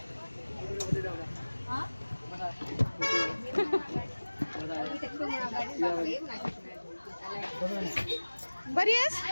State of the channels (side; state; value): both; inverted; correlation -1.00